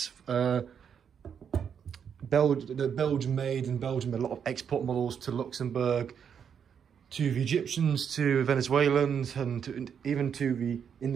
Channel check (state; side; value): quieter; left; 7.6 dB